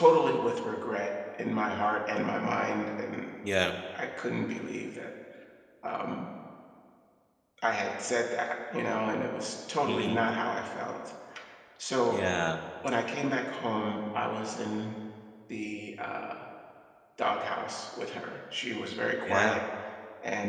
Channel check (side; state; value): both; identical; correlation 1.00